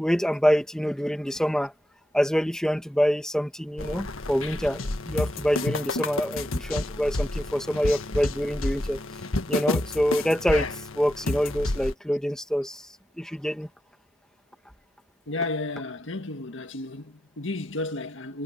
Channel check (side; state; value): both; normal; correlation 0.87